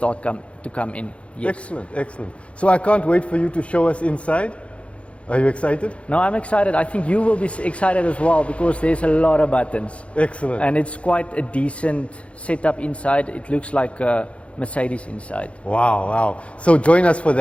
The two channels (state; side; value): late; right; 0.061 ms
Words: to come in. Yes. Excellent, excellent. So I can't wait for you to show us inside. Are you excited? No, I'm excited. I think you will be excited as well because there's a lot of buttons. Excellent. And it's quite a decent setup inside. It looks like a Mercedes inside. Wow, wow. So join us for